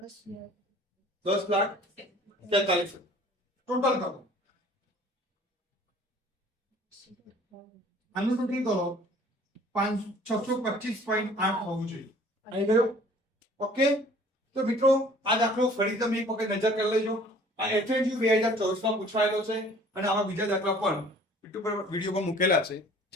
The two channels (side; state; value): both; normal; correlation 0.52